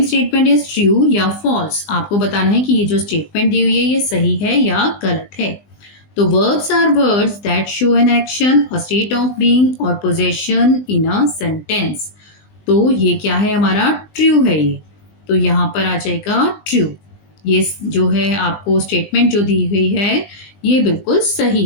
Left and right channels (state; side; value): late; right; 20 ms